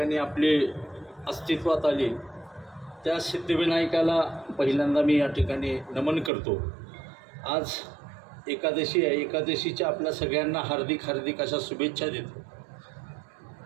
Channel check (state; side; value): drops out; left; at 6.3 s